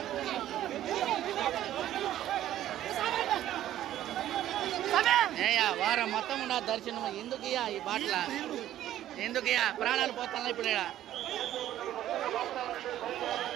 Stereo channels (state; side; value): quieter; left; 12.6 dB